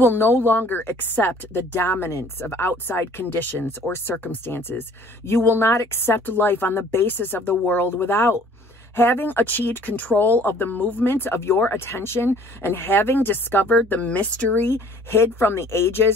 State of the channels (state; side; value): normal; both; correlation 0.54